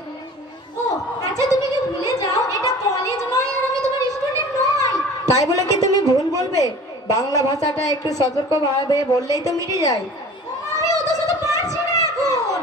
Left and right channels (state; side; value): normal; both; correlation 0.43